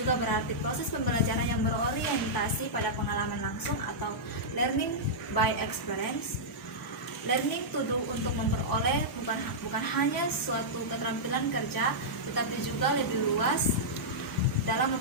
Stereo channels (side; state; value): both; normal; correlation -0.11